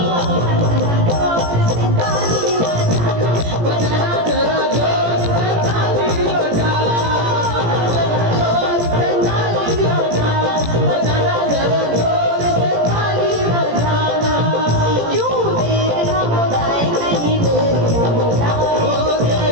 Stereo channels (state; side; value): late; left; 17 ms